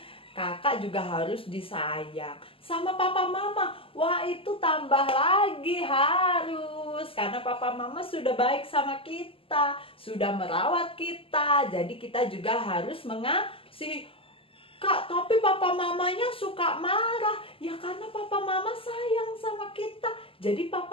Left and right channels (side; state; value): right; late; 0.26 ms